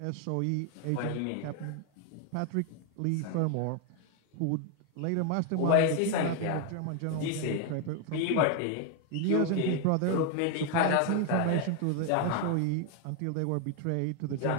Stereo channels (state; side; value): different; both; correlation 0.01